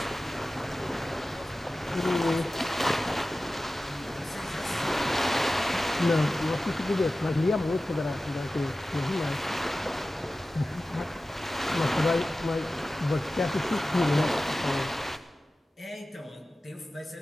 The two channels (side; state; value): both; normal; correlation 0.95